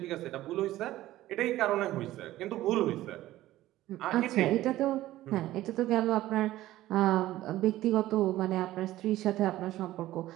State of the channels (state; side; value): quieter; left; 15.3 dB